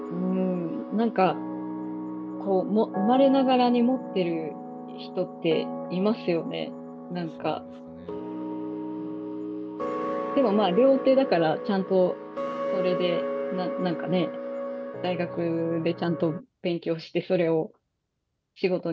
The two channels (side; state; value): both; identical; correlation 1.00